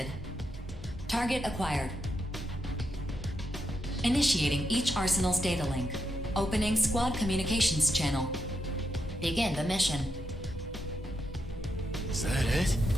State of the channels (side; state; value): both; normal; correlation 0.83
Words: Target acquired. Initiating each arsenal's data link. Opening squad communications channel. Begin the mission. Is that it?